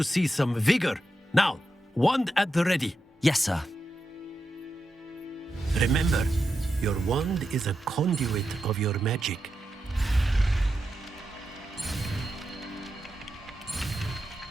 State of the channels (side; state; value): both; normal; correlation 0.88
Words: see some vigor. Now, wand at the ready. Yes, sir. Remember, your wand is a conduit of your magic.